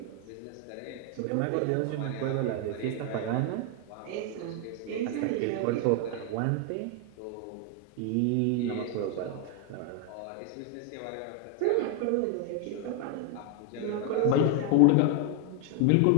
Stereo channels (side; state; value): both; different; correlation 0.01